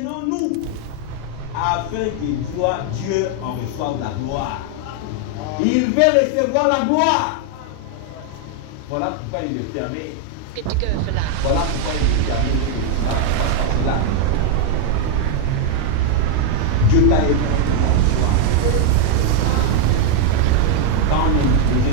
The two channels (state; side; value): different; both; correlation 0.00